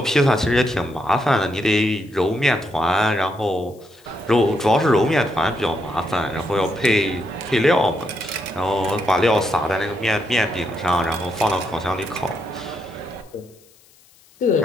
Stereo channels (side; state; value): left; noise; hiss, 29 dB below the sound